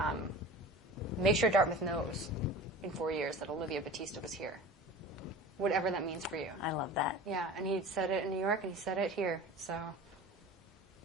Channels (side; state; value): both; normal; correlation 0.37